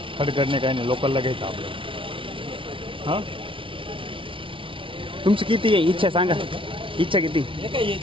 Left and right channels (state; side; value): late; left; 0.25 ms